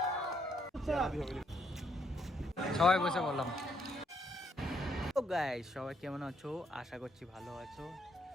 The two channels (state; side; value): normal; both; correlation 0.73